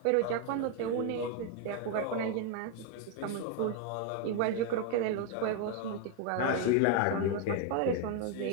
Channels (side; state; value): both; different; correlation 0.01